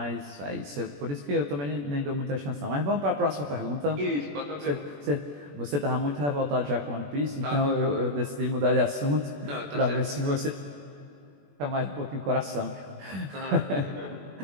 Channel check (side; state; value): left; late; 21 ms